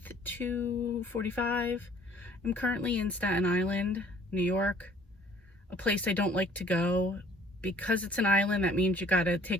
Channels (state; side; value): normal; both; correlation 0.56